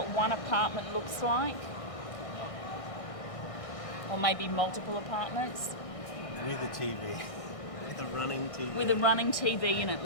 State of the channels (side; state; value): right; late; 1.6 ms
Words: one apartment looks like. Or maybe multiple apartments. With a TV. With a running TV. With a running TV in it.